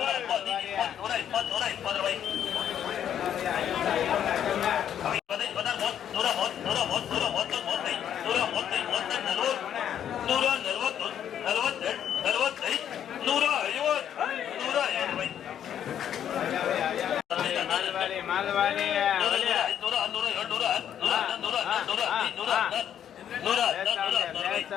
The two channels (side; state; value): right; quieter; 9.7 dB